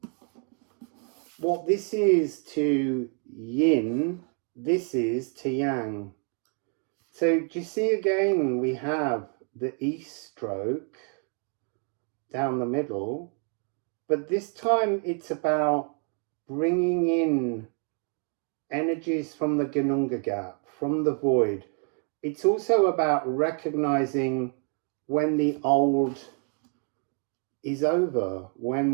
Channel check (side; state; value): left; quieter; 39.6 dB